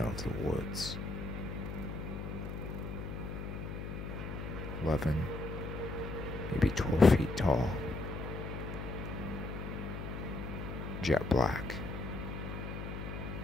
of the woods. 11, maybe 12 feet tall. Jet black.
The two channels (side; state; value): left; noise; hum, 6 dB below the sound